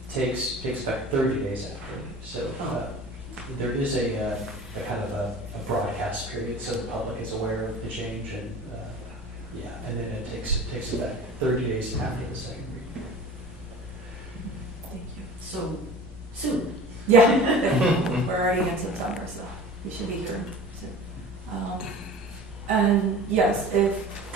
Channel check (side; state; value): both; normal; correlation 0.40